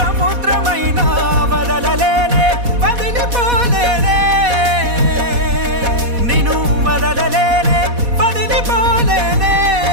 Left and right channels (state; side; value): late; left; 4.1 ms